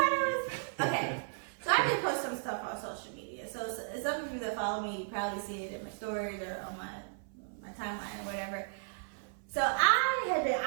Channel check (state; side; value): silent; left; 55 dB below the other